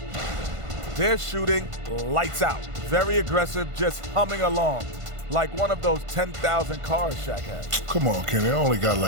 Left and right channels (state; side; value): late; left; 1.5 ms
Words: They're shooting lights out. Very aggressive, just humming along. Like one of those 10,000 cars Shaq has. Come on, Kenny. I only got